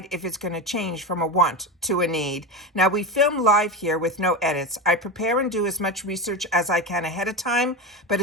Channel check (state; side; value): normal; both; correlation 0.19